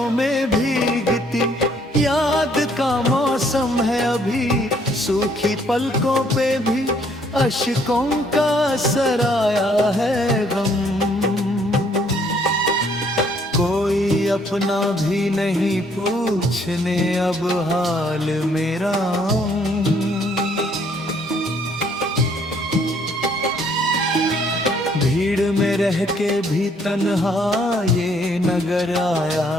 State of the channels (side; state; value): both; normal; correlation 0.65